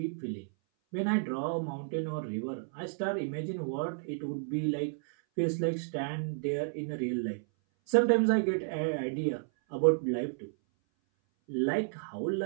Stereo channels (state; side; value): silent; left; 56 dB below the other